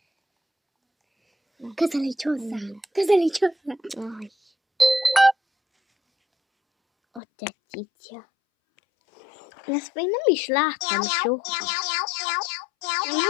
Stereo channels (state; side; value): drops out; right; at 7.2 s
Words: Közelíts hozzá. Közelíts hozzá. Aj. Ott egy cica. Ezt még nem is láttam soha.